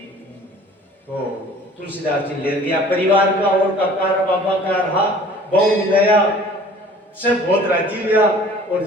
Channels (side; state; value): both; normal; correlation 0.49